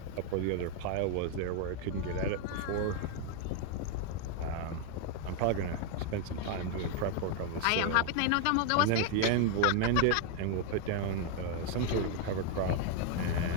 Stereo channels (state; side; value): different; both; correlation 0.01